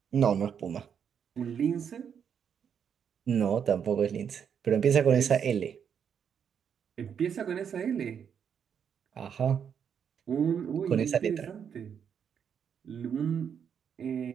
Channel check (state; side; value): quieter; left; 7.7 dB